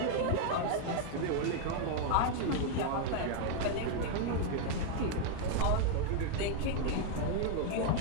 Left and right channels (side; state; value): both; different; correlation 0.00